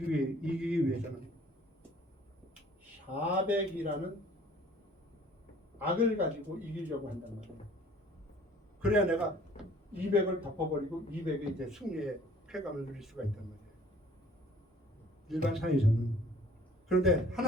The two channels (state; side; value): normal; both; correlation 0.54